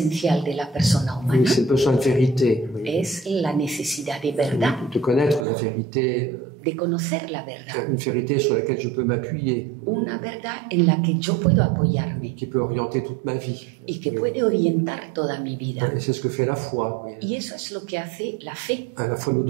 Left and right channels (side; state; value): left; drops out; at 5.5 s